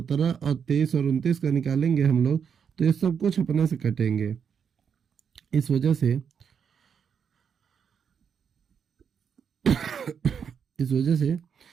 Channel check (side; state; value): left; quieter; 7.1 dB